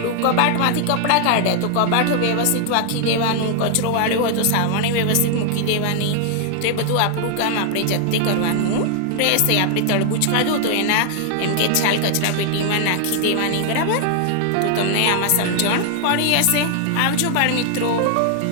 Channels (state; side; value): different; both; correlation 0.00